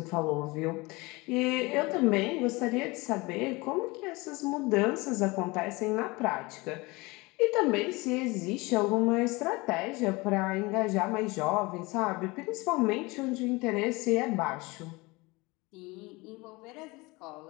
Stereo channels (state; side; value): quieter; right; 23.9 dB